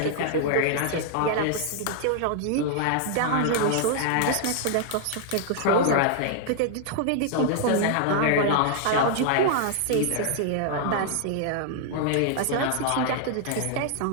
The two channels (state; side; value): different; both; correlation 0.00